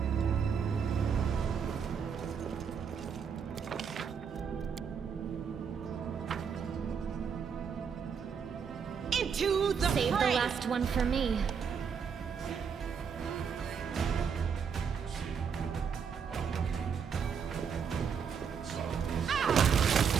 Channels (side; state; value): left; quieter; 6.7 dB